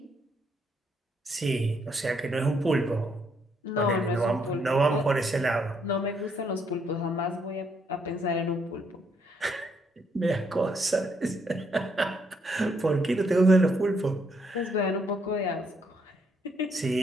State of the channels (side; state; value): both; normal; correlation 0.73